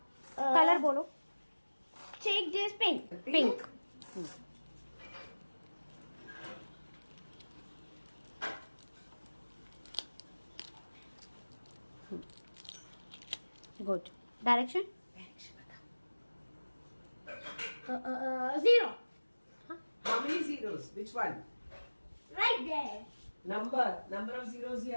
colour बोलो। Take this pink. Pink. Good. Direction? 0. How many zeros? Which one? Right there. Number of zeros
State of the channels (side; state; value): both; inverted; correlation -1.00